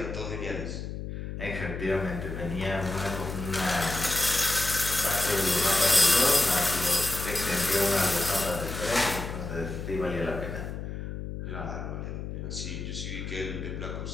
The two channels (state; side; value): noise; left; hum, 6 dB below the sound